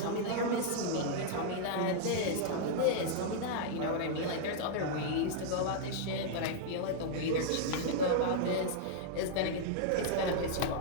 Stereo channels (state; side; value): different; both; correlation -0.01